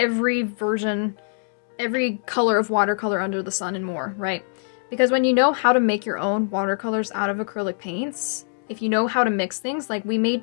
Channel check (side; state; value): right; silent; digital silence